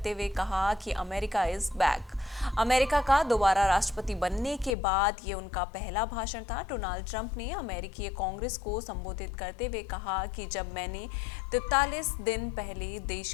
हुए कहा कि अमेरिका इज बैक। अमेरिका का दोबारा राष्ट्रपति बनने के बाद ये उनका पहला भाषण था। डोनाल्ड ट्रंप ने अमेरिकी कांग्रेस को संबोधित करते हुए कहा कि जब मैंने 43 दिन पहले देश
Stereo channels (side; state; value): right; drops out; at 4.8 s